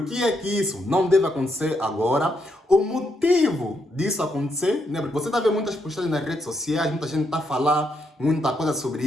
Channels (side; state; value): both; normal; correlation 0.79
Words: que é que isso não deve acontecer agora. O motivo disso acontecer, porque você está vendo muitas postagens nas redes sociais, muita gente está a falar muita coisa sobre